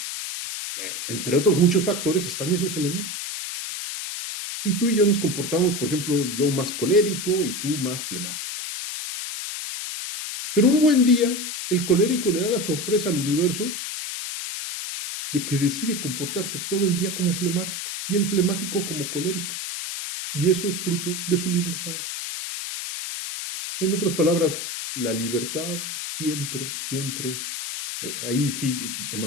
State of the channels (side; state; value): left; noise; hiss, 5 dB below the sound